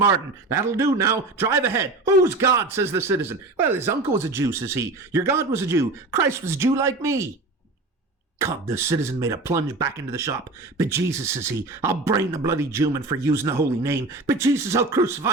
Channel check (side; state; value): left; quieter; 3.2 dB